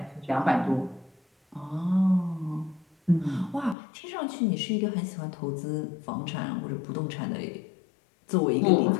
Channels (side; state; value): right; drops out; at 3.8 s